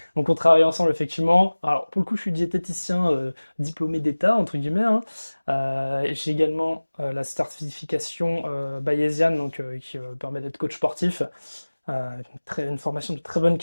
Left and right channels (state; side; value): inverted; both; correlation -1.00